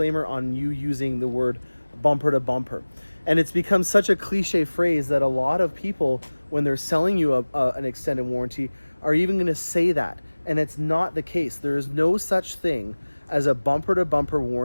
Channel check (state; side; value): inverted; both; correlation -1.00